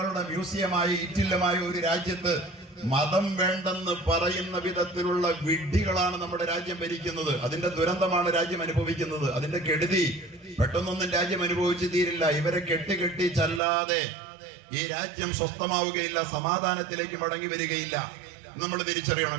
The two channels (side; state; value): left; drops out; at 13.6 s